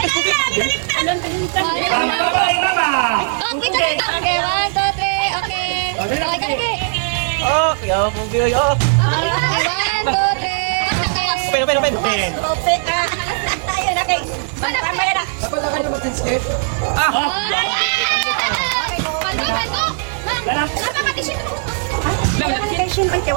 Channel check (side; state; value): left; silent; digital silence